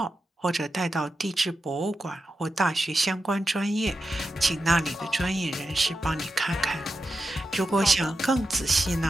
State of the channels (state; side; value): normal; both; correlation 0.90